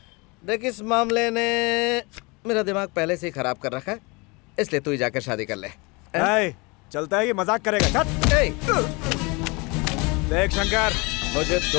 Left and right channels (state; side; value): quieter; right; 27.6 dB